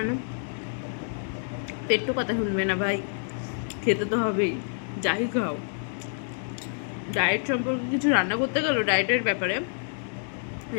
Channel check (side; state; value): right; silent; digital silence